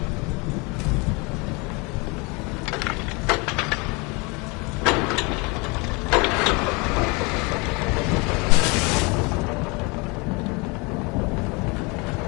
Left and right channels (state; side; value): quieter; right; 28.6 dB